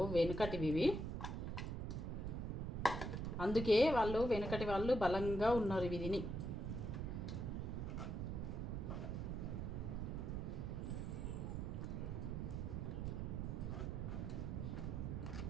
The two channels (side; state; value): right; noise; rumble, 2 dB below the sound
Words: వెనుకటివి. అందుకే వెనుకటి వాళ్ళు బలంగా ఉన్నారు ఇవి తిని.